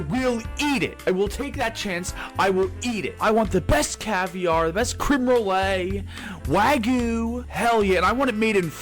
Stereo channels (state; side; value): identical; both; correlation 1.00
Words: eat it. I will take that chance. I will eat it. I want the best caviar, the best creme brulee, Wagyu, hell yeah, and I want it made in